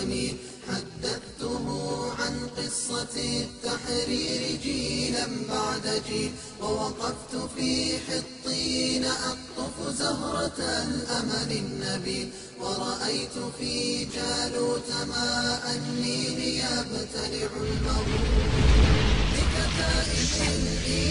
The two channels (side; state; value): both; identical; correlation 1.00